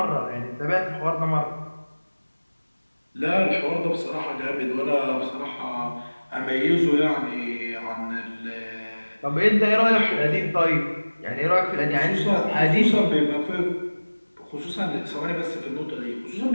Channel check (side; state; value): both; inverted; correlation -1.00